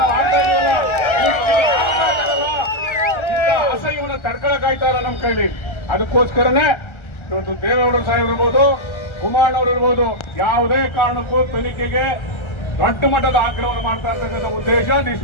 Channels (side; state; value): right; late; 1.3 ms